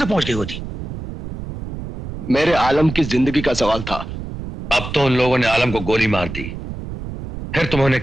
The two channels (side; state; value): right; noise; rumble, 8 dB below the sound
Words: तक पहुंच गई होती। मेरे आलम की जिंदगी का सवाल था। अब तो उन लोगों ने आलम को गोली मार दी, फिर तुम उन्हें